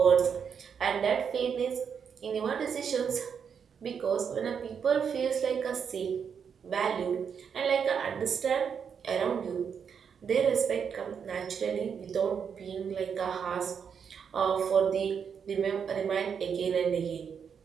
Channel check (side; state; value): left; quieter; 7.0 dB